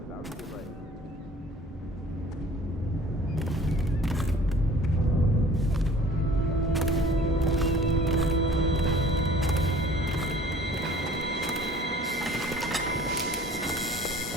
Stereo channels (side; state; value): both; normal; correlation 0.50